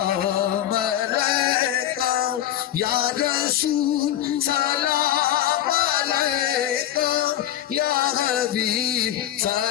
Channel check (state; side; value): quieter; right; 12.0 dB